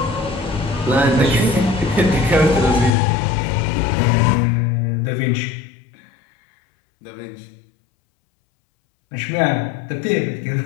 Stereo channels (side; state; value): right; drops out; at 2.9 s